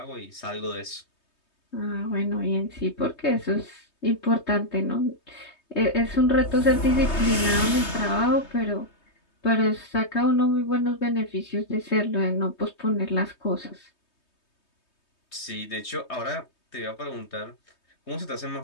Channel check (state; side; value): late; right; 3.2 ms